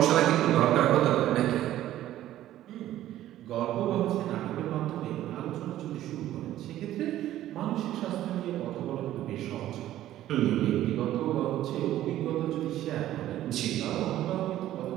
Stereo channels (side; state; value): left; quieter; 13.4 dB